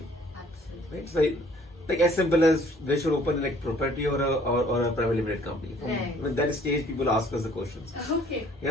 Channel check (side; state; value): both; normal; correlation 0.58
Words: Absolutely. Right? So like as simple as they should open like property or a private limited company. From Right. when that stage, people ask us the questions. Okay.